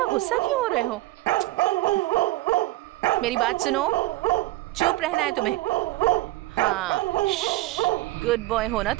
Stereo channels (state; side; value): quieter; left; 18.2 dB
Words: गुस्सा क्यों हो रहे हो? मेरी बात सुनो, चुप रहना है तुम्हें। हाँ, गुड बॉय हो ना